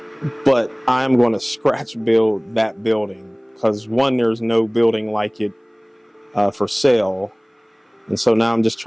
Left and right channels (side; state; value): both; identical; correlation 1.00